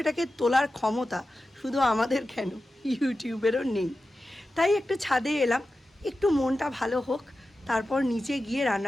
তোলার ক্ষমতা শুধু আমাদের কেন, ইউটিউবেরও নেই। তাই একটু ছাদে এলাম, একটু মনটা ভালো হোক, তারপর নিচে গিয়ে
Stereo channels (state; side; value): normal; both; correlation 0.93